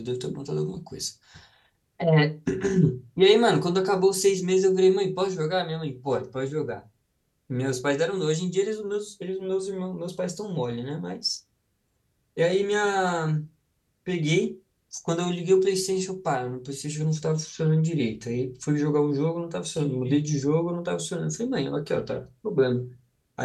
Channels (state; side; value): identical; both; correlation 1.00